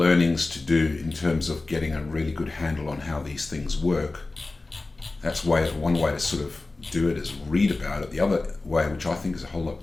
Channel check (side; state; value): right; quieter; 3.3 dB